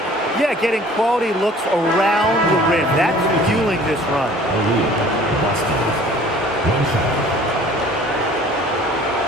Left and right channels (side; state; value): both; normal; correlation 0.50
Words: Yeah, getting quality looks around the rim. That's fueling this run. The lead. Boston. One shot.